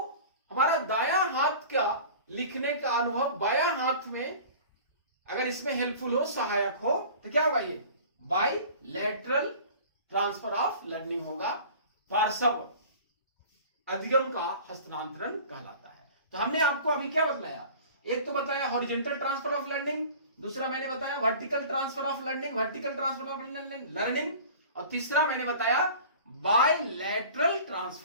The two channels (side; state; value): both; inverted; correlation -0.42